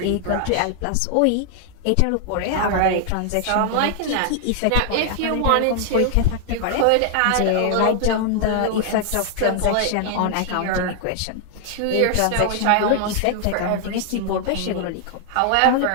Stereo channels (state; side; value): different; both; correlation 0.00